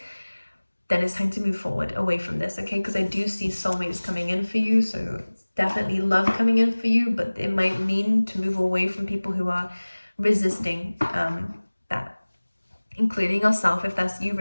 then it's time to move forward away from this, okay? Because I do see soulmates coming in for you, so it's definitely love coming in for you, but it might mean to move away from people who are resisting that, including yourself if that's you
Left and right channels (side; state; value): both; inverted; correlation -1.00